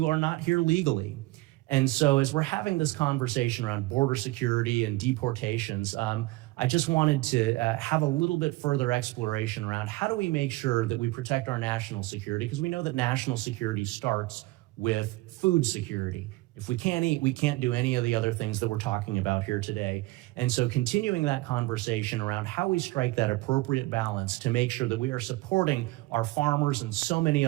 are not here legally. And so as we're having this conversation around border security and deportations, I just wanted to have a little bit further exploration around how do we make sure that we protect our national security, because we know that national security starts with food security. If we can't eat, we can't do any of the other things that we're talking about here today. And so continuing that conversation around how we strike that appropriate balance to make sure that we are supporting our farmers and so many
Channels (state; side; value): quieter; left; 20.1 dB